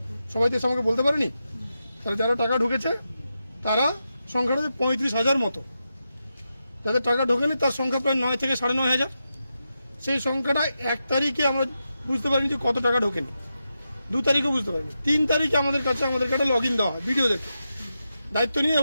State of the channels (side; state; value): both; inverted; correlation -0.88